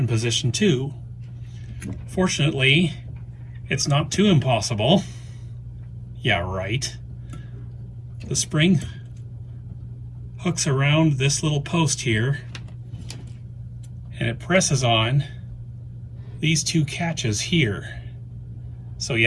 position too. Fortunately, it's not too impossible. Yeah, right. The spring hooks around this little post here, and it presses on these two catches here. So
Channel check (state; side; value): identical; both; correlation 1.00